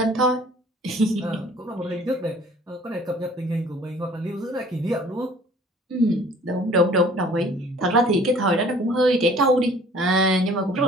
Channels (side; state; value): both; normal; correlation 0.52